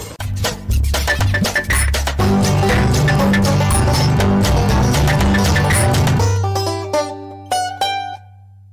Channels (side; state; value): both; identical; correlation 1.00